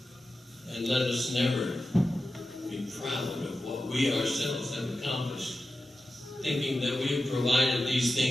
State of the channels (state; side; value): normal; both; correlation 0.92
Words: and let us never be proud of what we ourselves have accomplished, thinking that we have provided these